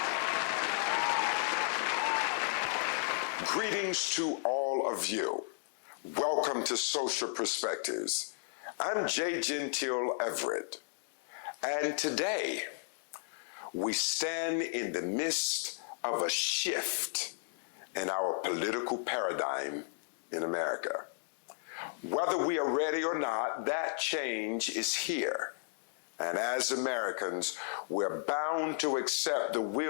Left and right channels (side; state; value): right; silent; digital silence